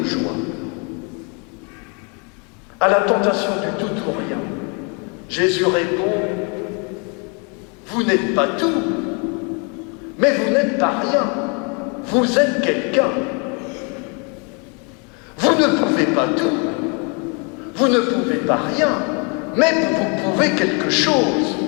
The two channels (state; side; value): quieter; right; 34.8 dB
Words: joie. À la tentation du tout ou rien, Jésus répond, vous n'êtes pas tout, mais vous n'êtes pas rien. Vous êtes quelqu'un. Vous ne pouvez pas tout, vous ne pouvez pas rien, mais vous pouvez quelque chose.